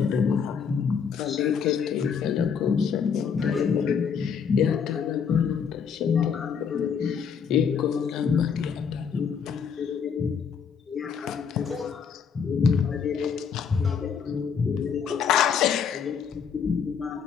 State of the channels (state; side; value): quieter; right; 6.7 dB